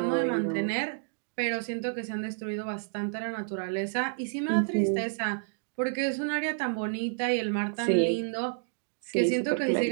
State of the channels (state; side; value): silent; left; digital silence